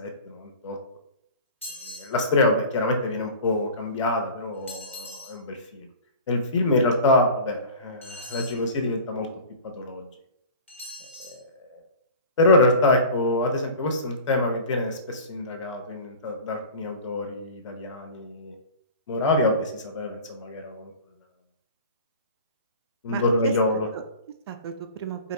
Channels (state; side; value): inverted; both; correlation -0.38